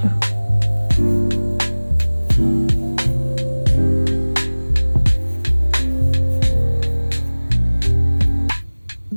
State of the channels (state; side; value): inverted; both; correlation -1.00